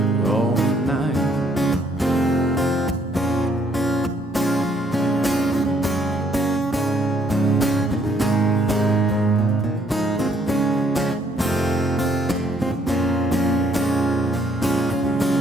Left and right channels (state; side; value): normal; both; correlation 0.67